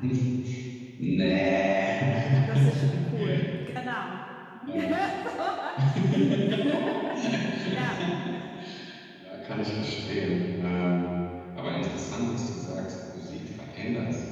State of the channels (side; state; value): both; identical; correlation 1.00